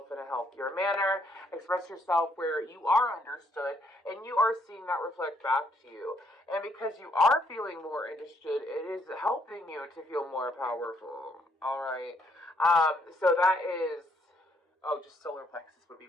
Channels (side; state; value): both; normal; correlation 0.70